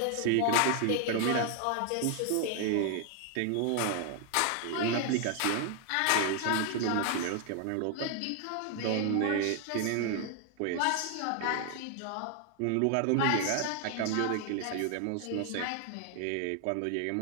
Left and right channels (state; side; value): different; both; correlation 0.00